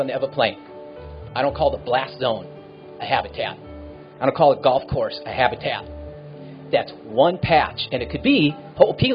the Ever Plain. I don't call the blast zone a habitat. I don't call it golf course a habitat. That's one patch. And it could be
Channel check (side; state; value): both; identical; correlation 1.00